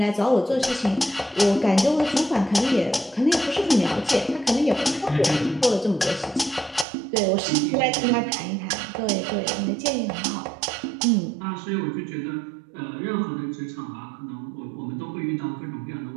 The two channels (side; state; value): left; drops out; at 6.9 s